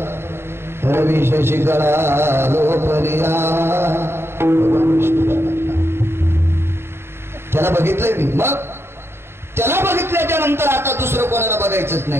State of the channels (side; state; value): left; late; 0.12 ms